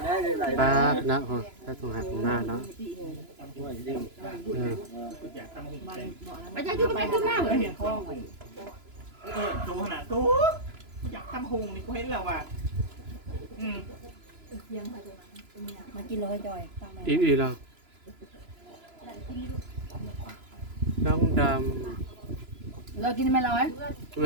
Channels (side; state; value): left; late; 3.0 ms